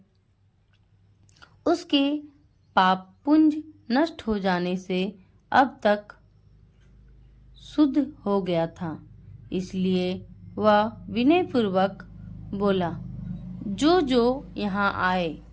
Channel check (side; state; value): both; identical; correlation 1.00